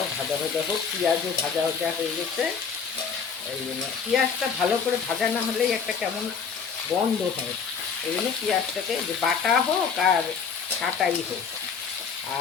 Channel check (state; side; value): quieter; right; 6.1 dB